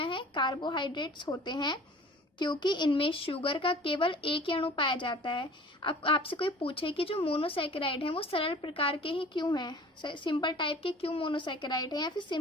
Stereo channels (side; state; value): both; normal; correlation 0.46